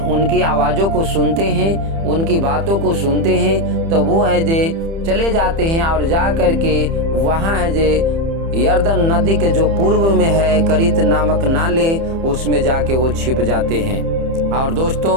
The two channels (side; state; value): left; late; 30 ms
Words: आवाज़ों को सुनते हैं, उनकी बातों को सुनते हैं, तो वो है जे चले जाते हैं और जा कर के वहाँ है जे यरदन नदी के जो पूर्व में है करित नामक नाले, उसमें जाके वो छिप जाते हैं। और दोस्तों,